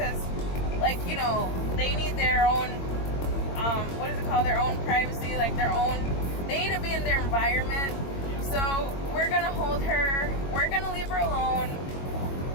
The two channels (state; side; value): late; right; 22 ms